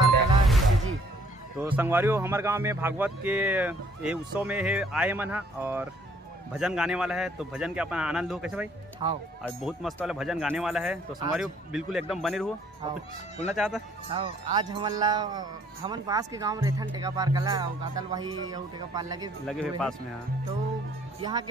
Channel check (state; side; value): normal; both; correlation 0.61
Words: कला जी। तो संगवारी हो हमारे गांव में भागवत के ये उत्सव में है आए मन है और भजन गाने वाला है। तो भजन के अपना आनंद हो कैसे भाई? हाँ आज बहुत मस्त वाला भजन गाने वाला है। तो संगवारी हो बिल्कुल एकदम बने रहो। कुछ बोलना चाहता? हाँ आज हमन पास के गांव रहथन टेकापार कला और गातल वही और टेकापार लगे हुए पास में। हाँ तो यहाँ